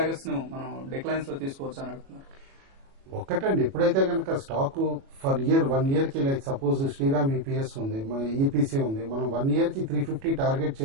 ను మనం డిక్లైన్స్ లో తీసుకోవచ్చు అని అడుగుతున్నారు. ఒక్కటండి, ఎప్పుడైతే కనుక స్టాక్ ఫర్ ఇయర్ 1 year కి లైక్ సపోజ్ శ్రీరామ్ ఈపీఎస్ ఉంది, ఈపీసీ ఉంది, మనం 1 year కి 350 టార్గెట్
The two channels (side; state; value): left; late; 37 ms